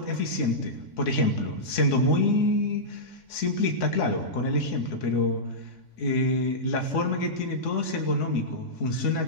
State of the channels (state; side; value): late; right; 3.6 ms